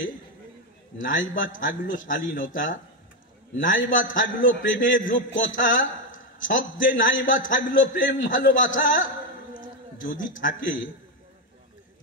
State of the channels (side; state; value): both; normal; correlation 0.07